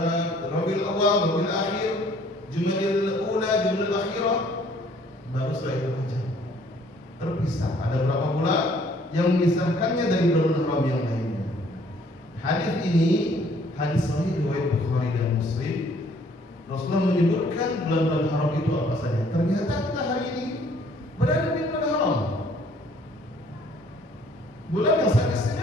Rabiul Awal, Rabiul Akhir, Jumadil Ula, Jumadil Akhirah, baru setelah itu Rajab. Terpisah. Ada berapa bulan yang memisahkannya dari bulan haram yang lainnya. Hadis ini hadis sahih riwayat Bukhari dan Muslim. Rasulullah menyebutkan bulan-bulan haram itu apa saja. Ternyata kita hari ini berada di bulan haram.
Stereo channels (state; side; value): normal; both; correlation 0.60